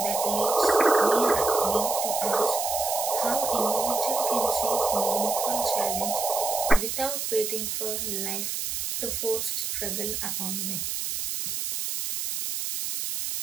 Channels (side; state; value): right; noise; hiss, 3 dB below the sound